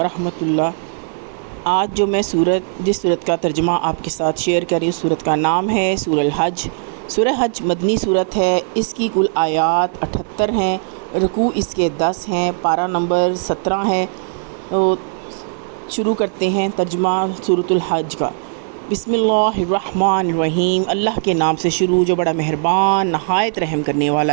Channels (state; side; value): silent; left; 64 dB below the other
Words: اللہ۔ آج جو میں جس صورت کا ترجمہ آپ کے ساتھ شیئر کر رہی ہوں، صورت کا نام ہے سورہ الحج۔ سورہ حج مدنی صورت ہے۔ اس کی کل آیات 78 ہیں، رکوع اس کے 10 ہیں، پارہ نمبر 17 ہے۔ تو شروع کرتے ہیں ترجمہ سورۃ الحج کا۔ بسم اللہ الرحمن الرحیم، اللہ کے نام سے شروع جو بڑا مہربان نہایت رحم کرنے